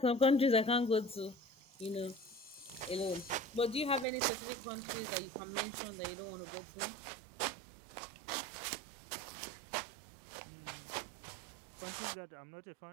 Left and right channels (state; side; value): drops out; left; at 4.0 s